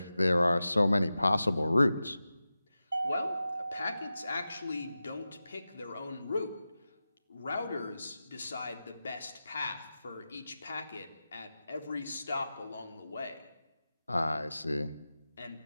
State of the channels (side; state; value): both; inverted; correlation -0.93